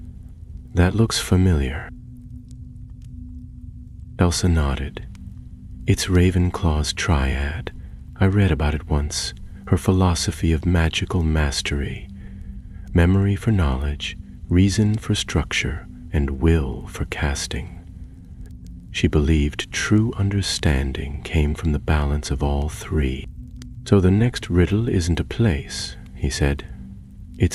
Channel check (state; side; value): identical; both; correlation 1.00